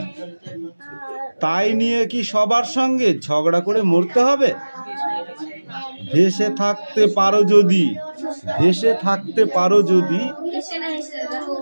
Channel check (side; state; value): both; inverted; correlation -1.00